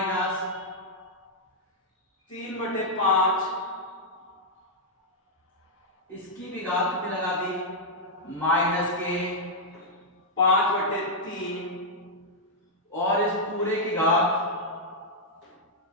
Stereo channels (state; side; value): normal; both; correlation -0.05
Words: 3/5, इसकी भी घात कितनी लगा दी? माइनस के 5/3, और इस पूरे की घात